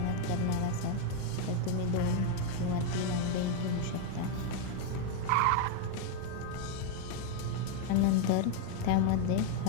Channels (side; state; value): both; different; correlation 0.01